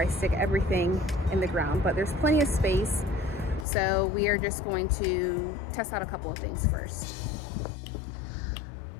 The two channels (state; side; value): drops out; right; at 3.7 s